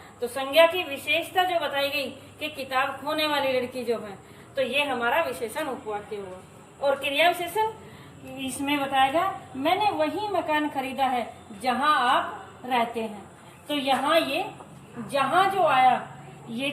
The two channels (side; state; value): both; identical; correlation 1.00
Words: तो संज्ञा की विशेषता जो बताई गई कि किताब खोने वाली लड़की जो है, तो ये हमारा विशेषण उपवाक्य हुआ। और क्रिया विशेषण इसमें बताएगा मैंने वही मकान खरीदा है जहां आप रहते हैं। तो यहाँ ये जहां जो आया, ये